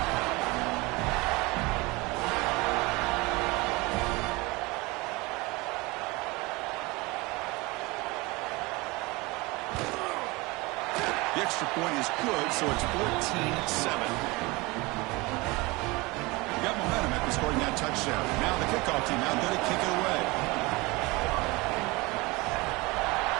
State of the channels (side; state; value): left; quieter; 23.8 dB